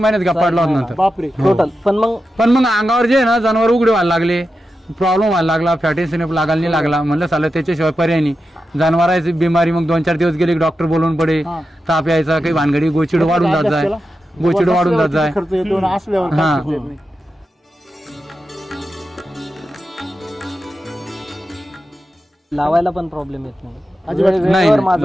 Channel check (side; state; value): both; normal; correlation 0.90